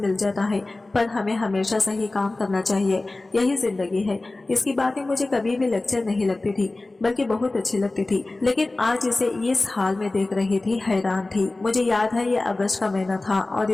जाता है। पर हमें हमेशा सही काम करना चाहिए, यही जिंदगी है। इसकी बातें मुझे कभी भी लेक्चर नहीं लगती थी, बल्कि बहुत अच्छी लगती थी। लेकिन आज इसे इस हाल में देख रही थी, हैरान थी। मुझे याद है ये अगस्त का महीना था और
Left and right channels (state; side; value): quieter; right; 3.0 dB